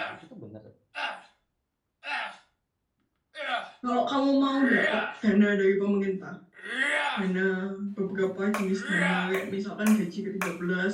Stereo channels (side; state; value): both; identical; correlation 1.00